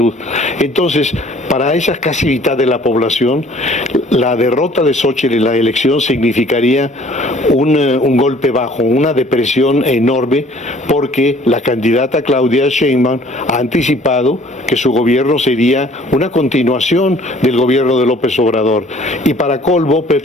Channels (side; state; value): both; normal; correlation 0.54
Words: Entonces, para esa casi mitad de la población, la derrota de Xóchitl en la elección significaría un golpe bajo, una depresión enorme, porque la candidata Claudia Sheinbaum ha anticipado que su gobierno sería una continuación del gobierno de López Obrador. Y para colmo,